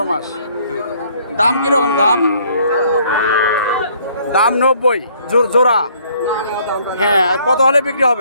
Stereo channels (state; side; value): inverted; both; correlation -0.62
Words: মাস। দাম কিরকম? দাম 90 জোড়া। হ্যাঁ, কত হলে বিক্রি